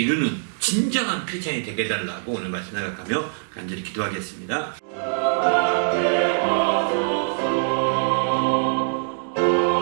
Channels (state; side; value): silent; left; digital silence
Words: 진정한 크리스찬이 되게 해달라고 오늘 말씀 나가며 간절히 기도하겠습니다.